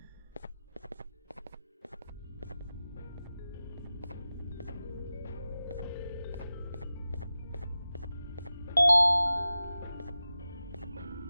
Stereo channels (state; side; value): inverted; both; correlation -0.94